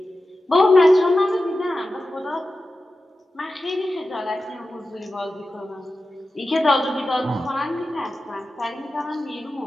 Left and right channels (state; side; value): normal; both; correlation 0.93